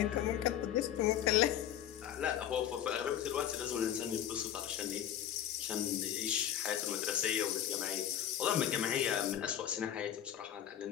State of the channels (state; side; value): quieter; right; 10.5 dB